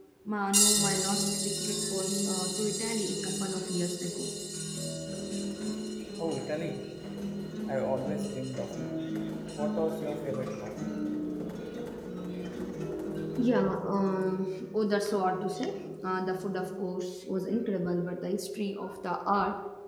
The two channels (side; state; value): both; identical; correlation 1.00